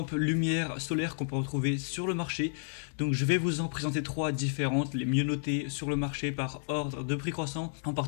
lumière solaire qu'on peut retrouver sur le marché. Donc je vais vous en présenter 3 différentes, les mieux notées sur le marché par ordre de prix croissant, en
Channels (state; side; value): silent; right; digital silence